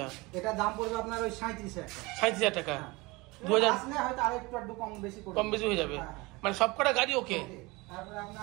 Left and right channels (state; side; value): quieter; left; 23.7 dB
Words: এটা দাম পড়বে আপনার ওই 37,000 টাকা। 37,000 টাকা। 2000 আসলে হয়তো আরেকটু কম বেশি হয়ে যাবে, মানে সবকটা গাড়ি ওকে। তারপরে